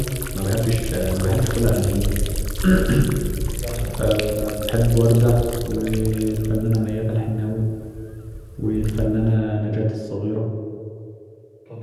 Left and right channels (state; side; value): identical; both; correlation 1.00